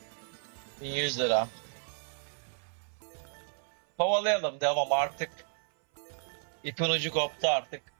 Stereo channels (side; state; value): left; silent; 56 dB below the other